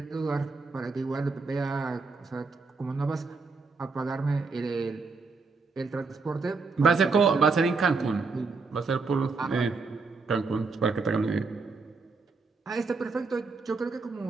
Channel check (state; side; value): quieter; left; 4.3 dB